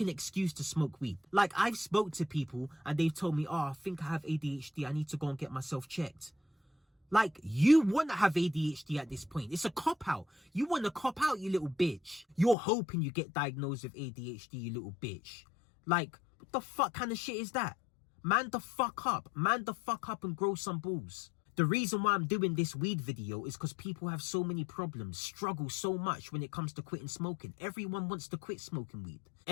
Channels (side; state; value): right; drops out; at 12.6 s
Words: excuse to smoke weed. Like, I've spoke to people and they've told me, oh, I think I have ADHD, I need to go and get myself checked. Like, you want to have ADHD at this point. It's a cop-out. You want to cop out, you little bitch. You're hoping you get diagnosed with ADHD, you little bitch. Like, what the fuck kind of shit is that? Man the fuck up. Man the fuck up and grow some balls. The reason why I'm doing this weed video is because people have so many problems, struggle so much when it comes to quitting smoking. Everyone wants to quit smoking weed.